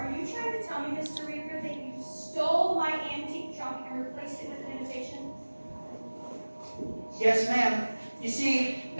you trying to tell me, Mr. Reaver, that you stole my antique trunk and replaced it with an imitation? Yes, ma'am. You see,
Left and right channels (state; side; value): inverted; both; correlation -1.00